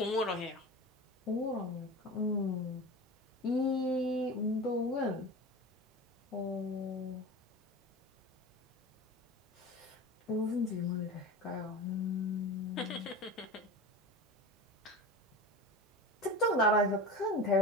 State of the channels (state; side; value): normal; both; correlation 0.30